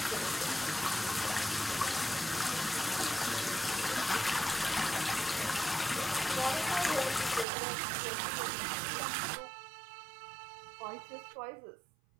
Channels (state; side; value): drops out; left; at 7.5 s